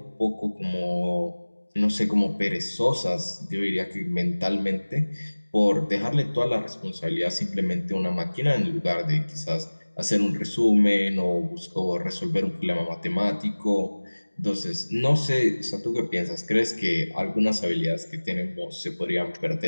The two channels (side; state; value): both; inverted; correlation -1.00